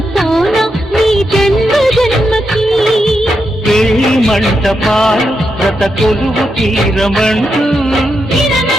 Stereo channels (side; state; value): both; normal; correlation 0.84